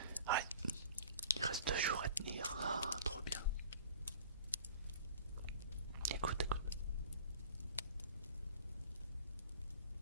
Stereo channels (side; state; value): both; inverted; correlation -0.45